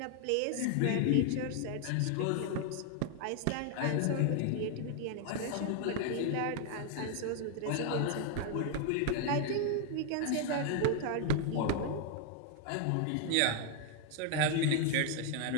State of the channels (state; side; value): different; both; correlation 0.00